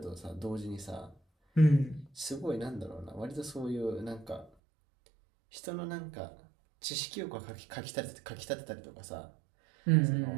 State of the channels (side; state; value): left; drops out; at 4.5 s